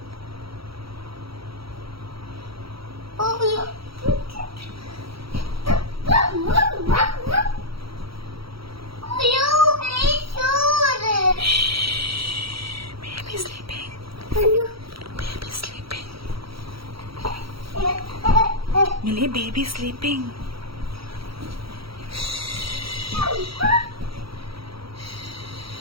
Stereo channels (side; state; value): left; late; 0.75 ms